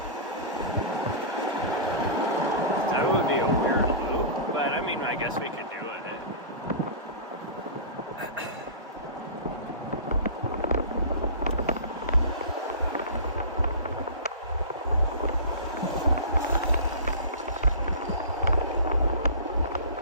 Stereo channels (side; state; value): both; inverted; correlation -0.34